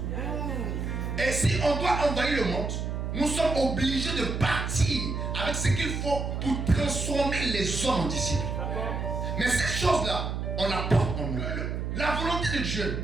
Et si on doit envahir le monde, nous sommes obligés de partir avec ce qu'il faut pour transformer les hommes en disciples. Mais cette chose-là, on la porte en nous. La volonté de Dieu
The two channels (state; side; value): noise; right; hum, 3 dB below the sound